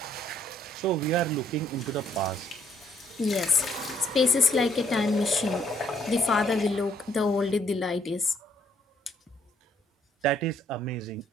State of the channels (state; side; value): normal; both; correlation 0.65